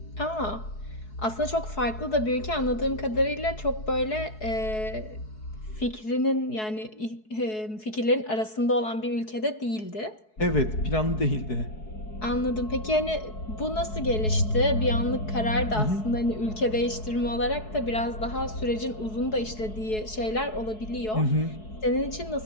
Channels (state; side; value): late; right; 4.7 ms